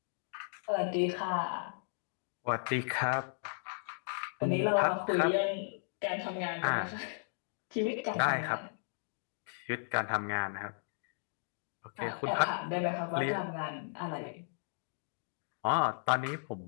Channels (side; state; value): right; silent; digital silence